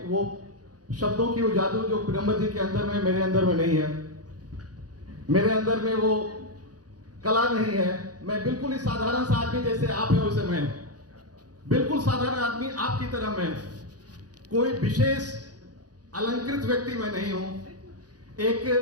वो शब्दों की वो जादू जो पिरम्बर जी के अंदर में, मेरे अंदर में नहीं है। मेरे अंदर में वो कला नहीं है। मैं बिल्कुल ही साधारण सा आदमी, जैसे आप हैं वैसे मैं, बिल्कुल साधारण आदमी आपकी तरह मैं, कोई विशेष अलंकृत व्यक्ति मैं नहीं हूं। एक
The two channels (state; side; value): late; left; 0.68 ms